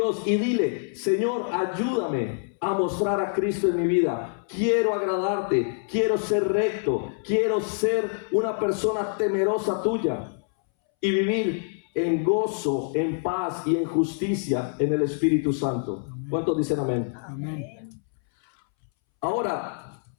y dile, Señor, ayúdame a mostrar a Cristo en mi vida. Quiero agradarte, quiero ser recto, quiero ser una persona temerosa tuya y vivir en gozo, en paz y en justicia en el Espíritu Santo. Amén. ¿Cuántos dicen amén? Amén. Ahora,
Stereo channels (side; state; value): right; silent; 61 dB below the other